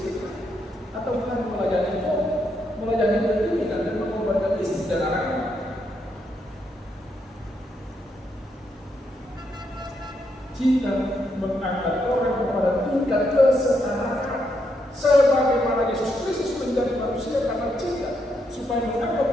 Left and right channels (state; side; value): normal; both; correlation 0.78